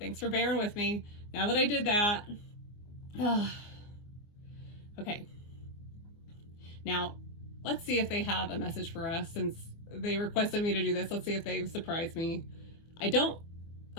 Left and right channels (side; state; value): right; late; 24 ms